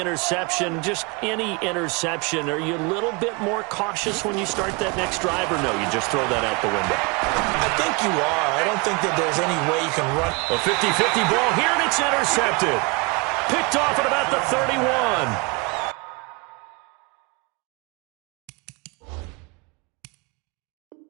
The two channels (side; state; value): left; quieter; 28.4 dB